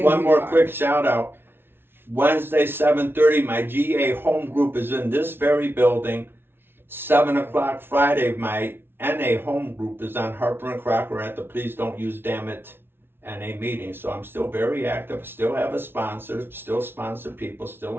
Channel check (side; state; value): left; late; 0.11 ms